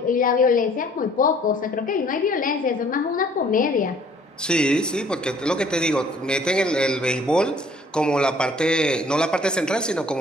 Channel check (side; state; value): both; normal; correlation 0.57